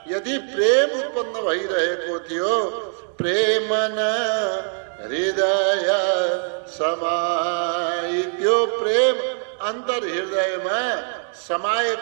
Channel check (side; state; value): left; silent; 60 dB below the other